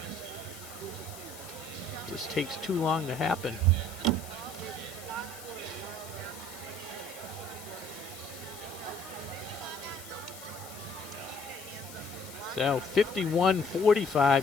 Just takes too long to happen. So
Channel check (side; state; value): left; noise; hiss, 15 dB below the sound